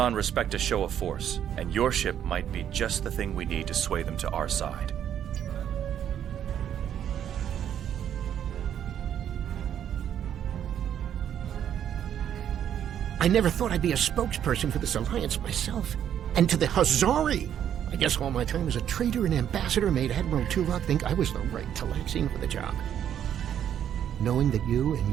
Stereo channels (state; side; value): quieter; left; 9.7 dB